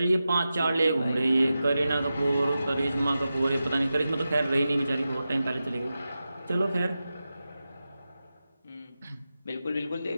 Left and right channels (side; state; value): both; inverted; correlation -0.92